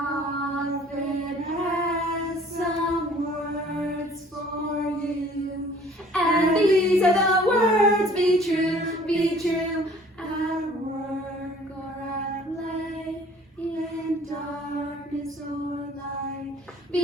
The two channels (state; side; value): normal; both; correlation 0.54